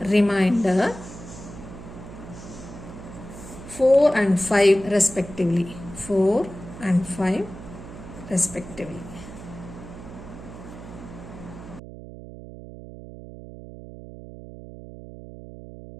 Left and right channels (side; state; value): right; noise; hum, 14 dB below the sound